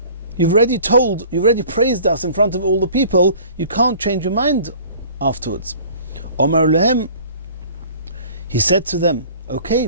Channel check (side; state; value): both; inverted; correlation -0.47